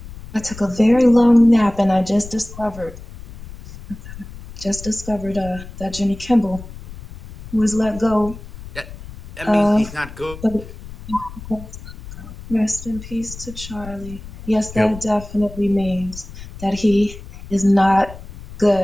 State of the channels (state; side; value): noise; left; rumble, 15 dB below the sound